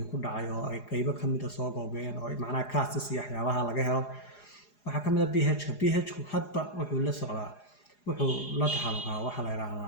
ku dhacay oo ay qaybo ka mid ah soo googeen oo macnaha castis iyo waxyaabaha laga helo waxaa ka mid ah pH-ku hadba wuxuu la socdaa wuxuu la taxalluqaa waxaa la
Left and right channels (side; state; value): right; late; 4.9 ms